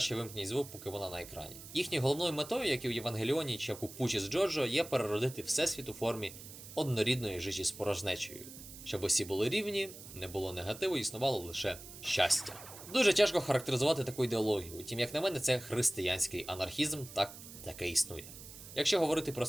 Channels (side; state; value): right; noise; hiss, 15 dB below the sound